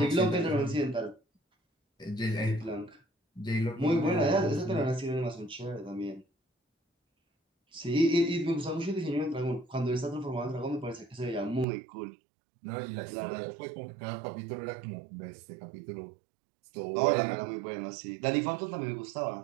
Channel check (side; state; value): left; drops out; at 11.7 s